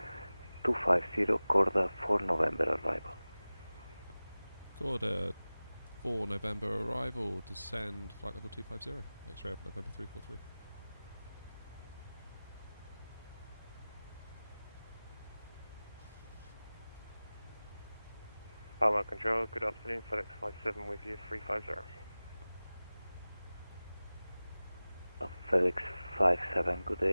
250, Corda 4 November arrival. Corda 4 November arrival, descend flight level 250, X-ray Alpha November 343. Palma Control, good afternoon, FedEx 57 with you, 350. FedEx 57, good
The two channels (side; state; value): both; inverted; correlation -0.98